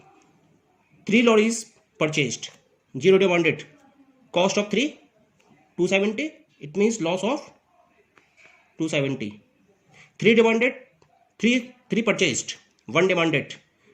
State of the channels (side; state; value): both; identical; correlation 1.00